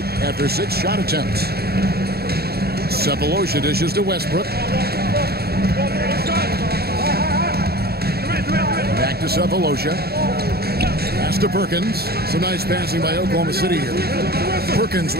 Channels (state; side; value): late; left; 0.46 ms